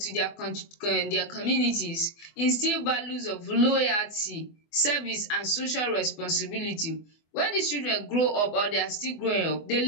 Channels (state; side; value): late; right; 24 ms